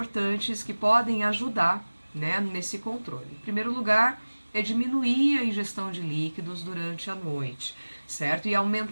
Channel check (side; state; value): both; inverted; correlation -1.00